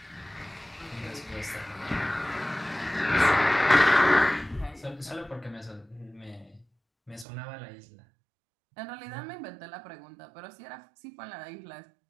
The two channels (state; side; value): drops out; left; at 7.2 s